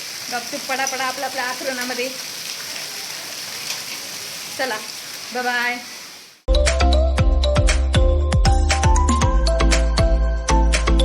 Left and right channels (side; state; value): both; identical; correlation 1.00